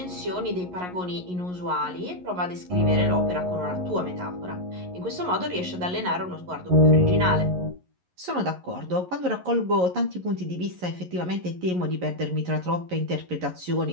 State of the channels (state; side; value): late; left; 11 ms